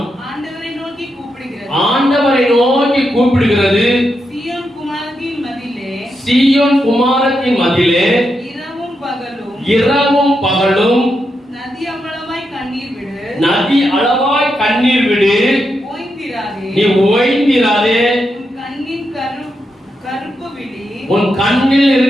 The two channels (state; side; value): normal; both; correlation 0.84